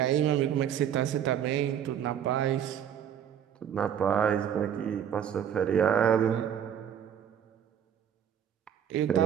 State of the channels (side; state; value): left; quieter; 9.1 dB